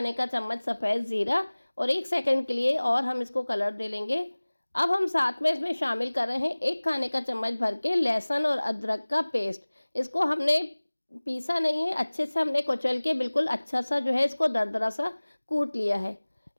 का चम्मच सफ़ेद ज़ीरा और 1 सेकंड के लिए और हम इसको कलर दे लेंगे। अब हम साथ में इसमें शामिल कर रहे हैं 1 खाने का चम्मच भर के लहसुन और अदरक का पेस्ट। इसको हमने पीसा नहीं है, अच्छे से हमने कुचल के बिल्कुल अच्छा सा जो है इसको दरदरा सा कूट लिया है।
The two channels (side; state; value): both; inverted; correlation -1.00